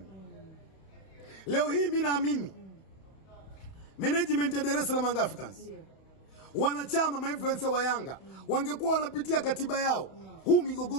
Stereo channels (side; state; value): right; late; 31 ms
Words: Leo hii mimi naamini management ya Dar es Salaam Africans, wanachama ma-influencer wa Yanga wangekuwa wanapitia katiba yao, huu